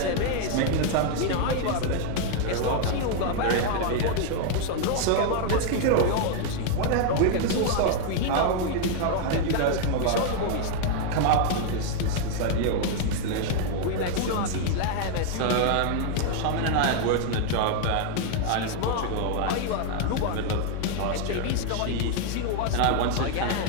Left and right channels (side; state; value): both; different; correlation 0.00